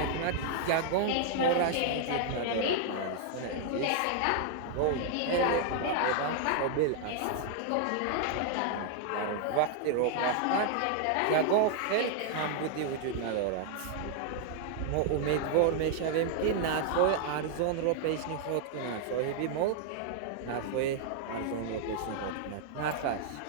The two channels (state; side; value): different; both; correlation 0.00